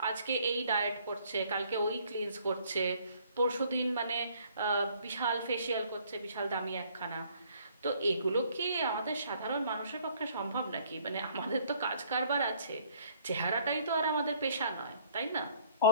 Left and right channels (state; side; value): inverted; both; correlation -0.61